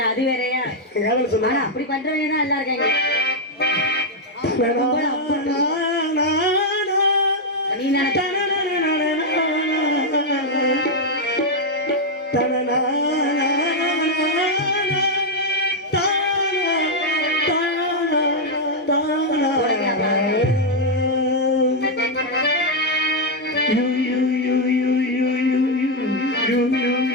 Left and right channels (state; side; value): normal; both; correlation 0.00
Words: அது வேறயா. ஆனா அப்படி பண்றவங்க தான் எல்லாம் இருக்காங்க. நீ நினைச்ச